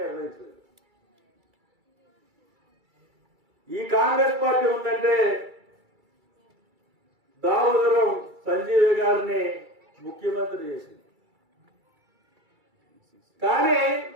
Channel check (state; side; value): late; left; 2.3 ms